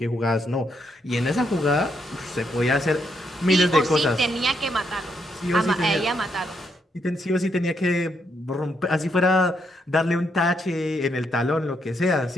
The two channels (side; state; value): both; normal; correlation 0.77